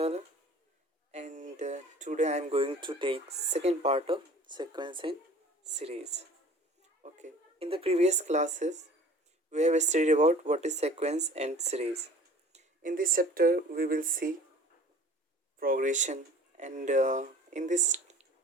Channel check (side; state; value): both; normal; correlation 0.47